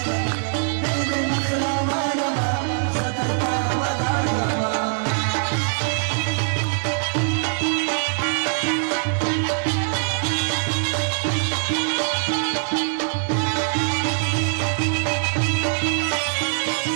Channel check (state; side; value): silent; left; digital silence